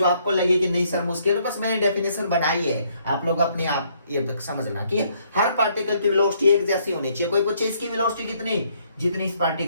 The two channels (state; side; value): inverted; both; correlation -0.68